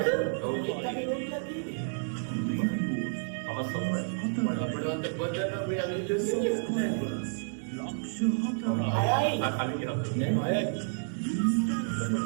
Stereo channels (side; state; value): left; silent; digital silence